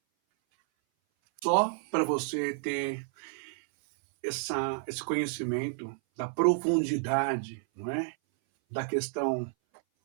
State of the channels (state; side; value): silent; left; 57 dB below the other